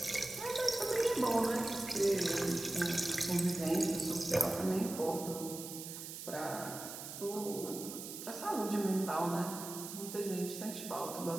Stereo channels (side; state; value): right; noise; hiss, 9 dB below the sound